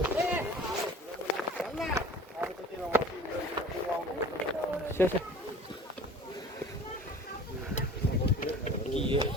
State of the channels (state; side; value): normal; both; correlation 0.43